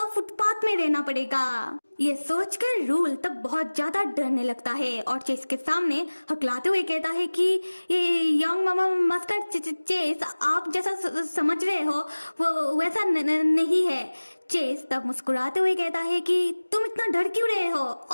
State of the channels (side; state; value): both; inverted; correlation -1.00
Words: फुटपाथ में रहना पड़ेगा। ये सोचकर रूल तब बहुत ज्यादा डरने लगता है और चेस के सामने हकलाते हुए कहता है कि ये यंग मामा मास्टर चेस आप जैसा समझ रहे हो वो वैसा नहीं है। चेस तब मुस्कुराते हुए कहता है कि तुम इतना डर क्यों रहे हो